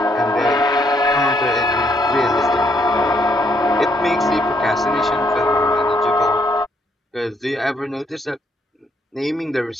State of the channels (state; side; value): normal; both; correlation 0.71